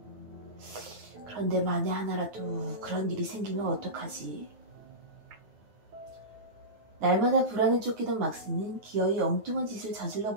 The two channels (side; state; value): left; late; 9.4 ms